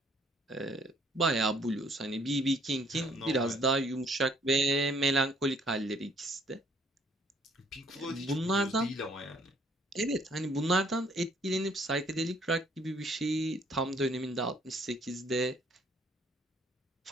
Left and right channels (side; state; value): both; normal; correlation 0.63